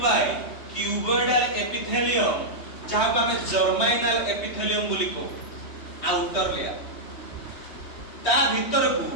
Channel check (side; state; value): right; late; 3.2 ms